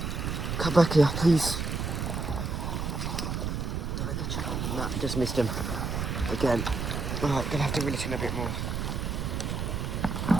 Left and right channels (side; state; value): right; noise; rumble, 2 dB below the sound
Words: Come back here, please. Did I get you? No, just missed him. Again. Alright, gonna have to reel it in a bit more.